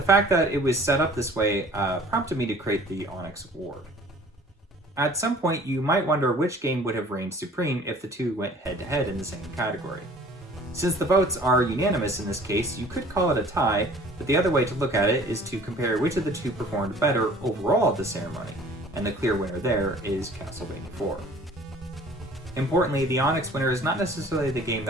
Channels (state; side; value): normal; both; correlation 0.50